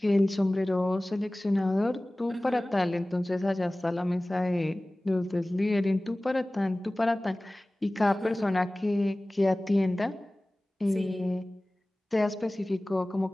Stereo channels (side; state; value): both; normal; correlation 0.98